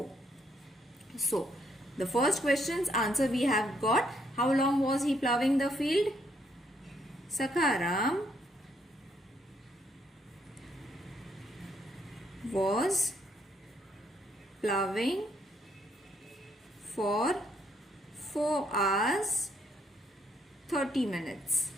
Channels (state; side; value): normal; both; correlation 0.72